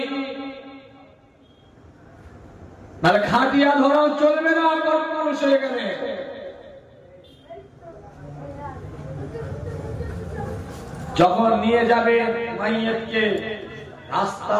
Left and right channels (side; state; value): both; identical; correlation 1.00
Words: তাহলে খাটিয়া ধরাও চলবে না পুরুষ হয়ে গেলে। যখন নিয়ে যাবে মাইয়াতকে,